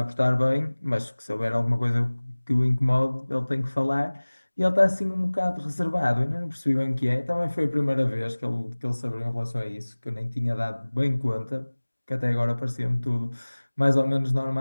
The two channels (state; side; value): inverted; both; correlation -1.00